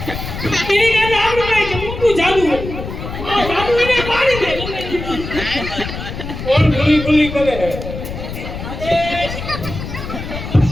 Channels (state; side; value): noise; left; rumble, 8 dB below the sound